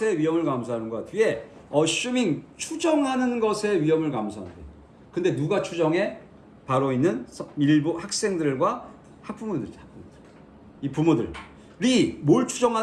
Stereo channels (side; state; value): both; identical; correlation 1.00